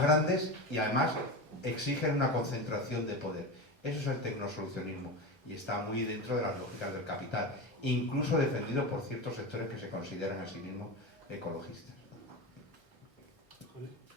grandes y además exigen una concentración de poder. Eso es el tecnosolucionismo y está muy dentro de las lógicas del capital, incluso defendido por ciertos sectores que se consideran a sí mismos ecologistas.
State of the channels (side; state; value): right; late; 1.3 ms